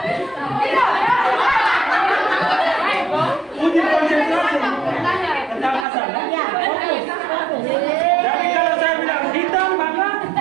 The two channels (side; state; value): left; drops out; at 5.9 s